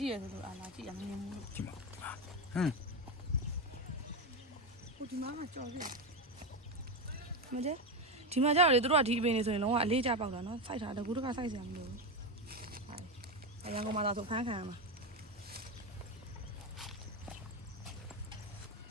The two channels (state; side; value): normal; both; correlation 0.13